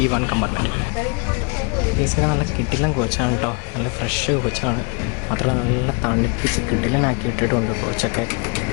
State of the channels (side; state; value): right; quieter; 34.8 dB